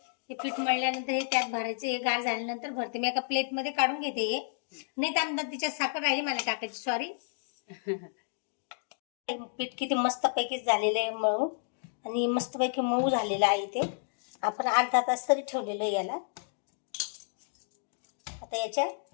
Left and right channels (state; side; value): silent; right; digital silence